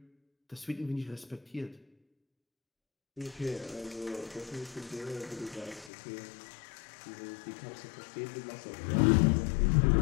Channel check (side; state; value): right; drops out; at 5.9 s